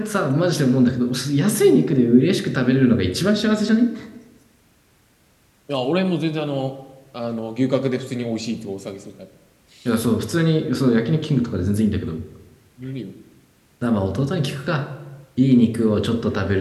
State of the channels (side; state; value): both; identical; correlation 1.00